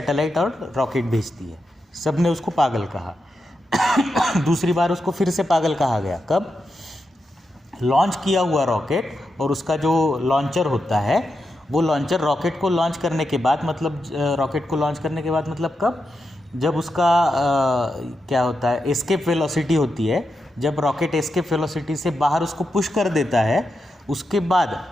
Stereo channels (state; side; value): normal; both; correlation 0.87